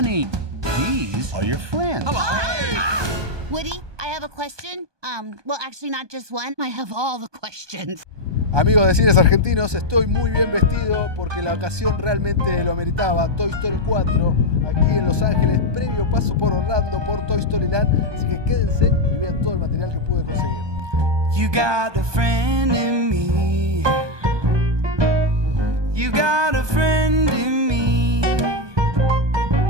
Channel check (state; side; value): late; left; 1.2 ms